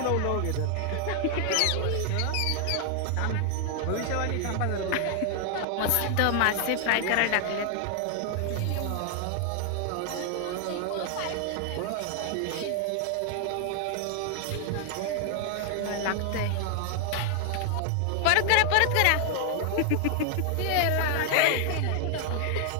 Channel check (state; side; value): different; both; correlation 0.00